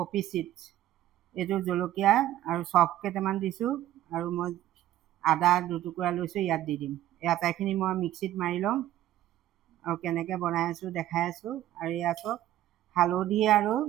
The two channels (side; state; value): left; quieter; 13.4 dB